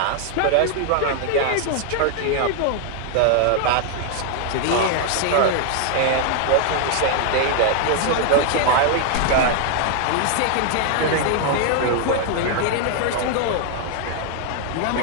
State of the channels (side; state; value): both; different; correlation 0.00